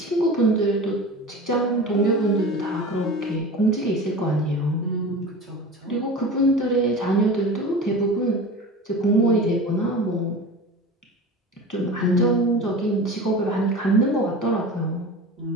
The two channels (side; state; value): both; normal; correlation 0.33